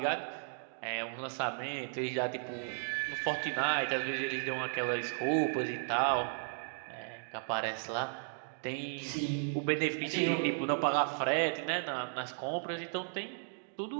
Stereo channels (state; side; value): silent; left; digital silence